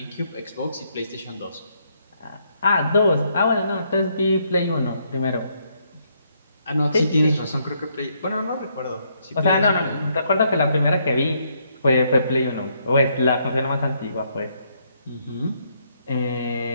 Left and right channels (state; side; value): inverted; both; correlation -0.73